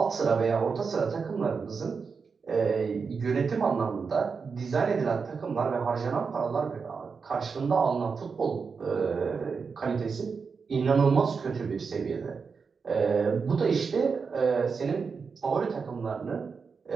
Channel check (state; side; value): quieter; left; 5.3 dB